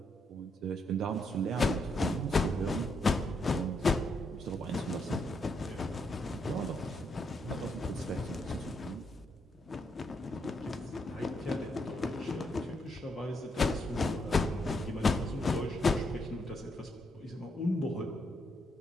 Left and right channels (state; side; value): normal; both; correlation 0.77